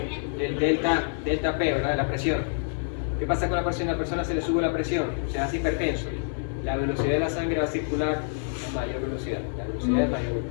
Del delta P, ¿verdad? De la presión. ¿Qué pasa con la presión? A la persona se le sube la presión, se hace hipertenso. La velocidad de la sangre va a circular a mayor velocidad. La velocidad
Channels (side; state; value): right; silent; 60 dB below the other